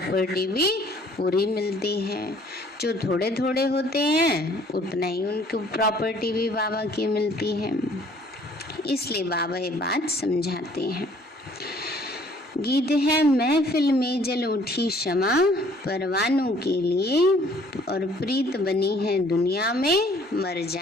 भी पूरी मिलती है। जो थोड़े थोड़े होते हैं उतना ही उनको प्रॉपर्टी भी बाबा की मिलती है। इसलिए बाबा ये बात समझाते हैं। गीत है, महफिल में जल उठी क्षमा परवानों के लिए और प्रीत बनी है दुनिया में मर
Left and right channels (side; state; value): both; normal; correlation 0.58